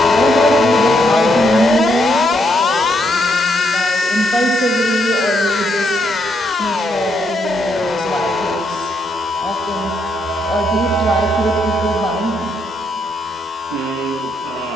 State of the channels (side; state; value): both; normal; correlation 0.76